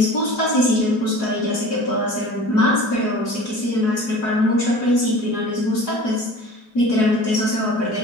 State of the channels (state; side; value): late; right; 4.7 ms